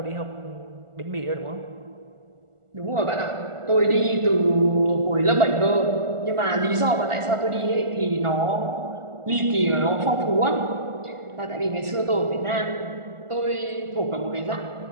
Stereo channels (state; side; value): late; left; 1.4 ms